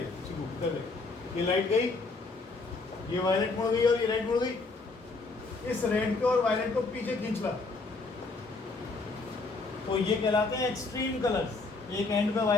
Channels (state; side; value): quieter; right; 3.7 dB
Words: देख, ये लाइट गई, ये वायलेट मुड़ गई और ये रेड मुड़ गई। इस रेड को और वायलेट को पीछे खींच ला, तो ये कहलाते हैं एक्सट्रीम कलर्स। एक एंड पे